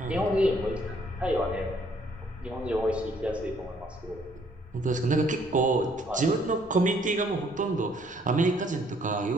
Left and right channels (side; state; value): both; normal; correlation 0.64